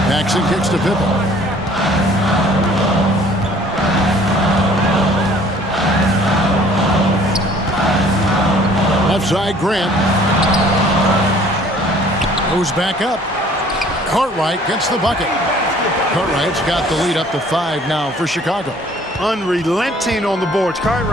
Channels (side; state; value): both; normal; correlation 0.55